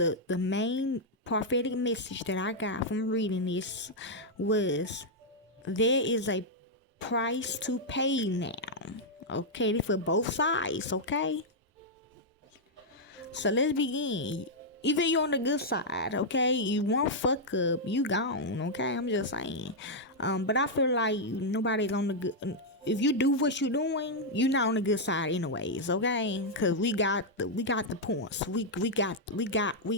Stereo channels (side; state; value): both; normal; correlation -0.04